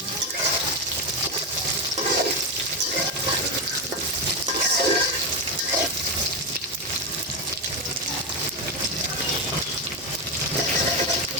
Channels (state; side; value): normal; both; correlation 0.11